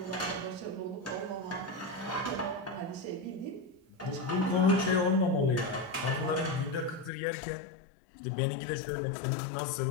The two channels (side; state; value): right; drops out; at 7.1 s